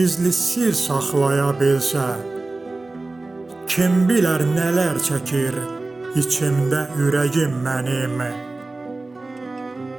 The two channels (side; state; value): left; quieter; 3.2 dB